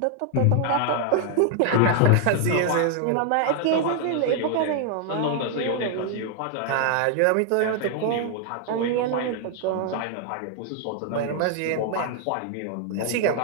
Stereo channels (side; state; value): both; different; correlation 0.00